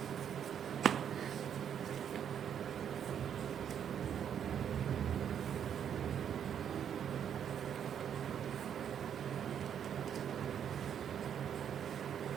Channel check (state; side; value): quieter; left; 8.7 dB